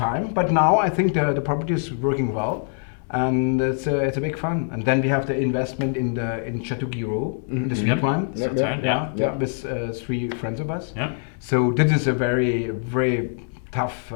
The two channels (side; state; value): right; silent; 63 dB below the other